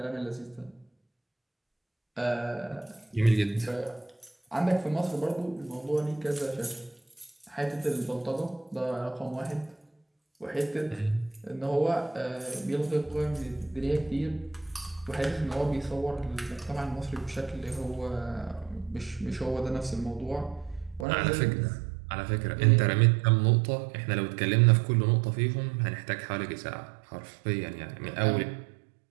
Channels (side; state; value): left; drops out; at 21.1 s